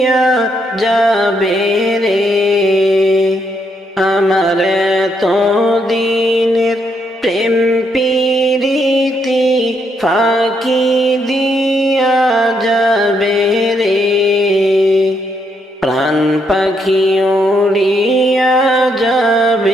যাবে রে, আমার তো দিনের প্রেম প্রীতি ফাঁকি দিয়া যাবে রে। প্রাণ পাখি উড়িয়া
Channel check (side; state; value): both; normal; correlation 0.76